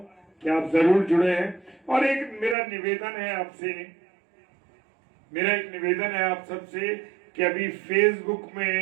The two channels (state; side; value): drops out; left; at 2.6 s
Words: कि आप जरूर जुड़े हैं। और एक मेरा निवेदन है आप सबसे कि अभी फेसबुक